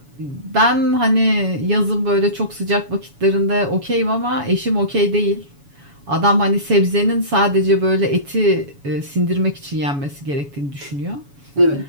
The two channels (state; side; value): late; left; 7.1 ms